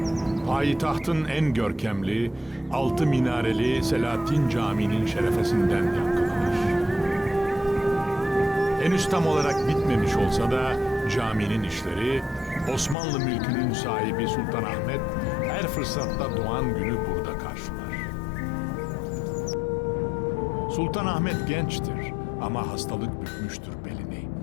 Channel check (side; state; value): right; drops out; at 13.0 s